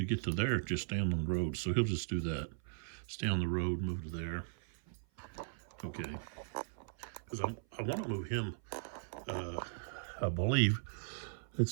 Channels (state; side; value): silent; left; 52 dB below the other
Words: get to there, just stand on the road. So he'll just do that. Stay on the road, move to there. Okay. Because I want to move him, I believe.